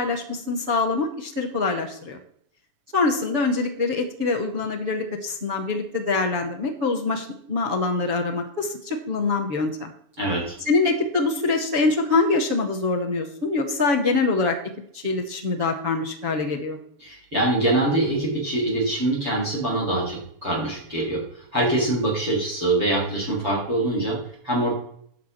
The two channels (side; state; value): left; late; 7.1 ms